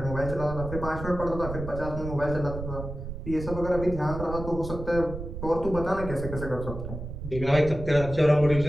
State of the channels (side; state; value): right; noise; rumble, 8 dB below the sound